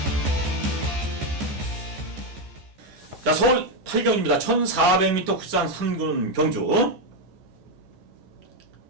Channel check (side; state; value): left; late; 14 ms